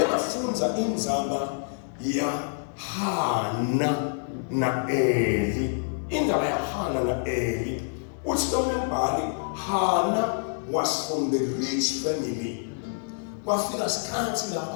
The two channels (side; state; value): right; silent; digital silence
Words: indzaba ya Hana na Eli. Indzaba ya Hana na Eli. Uthi lo mbhali Hana was from the rich family. Kwafika sikhathi